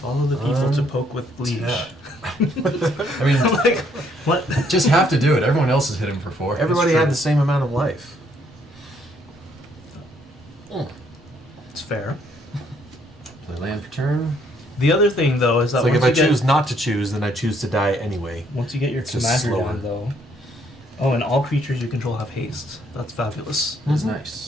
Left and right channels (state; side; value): normal; both; correlation 0.68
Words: the people to poke with leash. Yeah. I mean, Like, what? just have to do it. Everyone else is hitting for 4. Everybody true. had the same amount of life. It's fair. Play land for turn. The other thing, though, is that It's like if once I you get, choose not to choose, then I choose to die anyway. once you get your It's just commander slower. down, though. Oh, and all creatures you control have haste. That's fabulous. That's